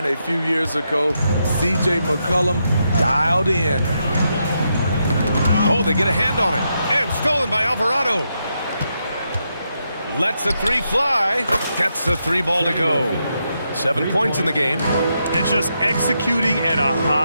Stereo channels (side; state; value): both; inverted; correlation -0.82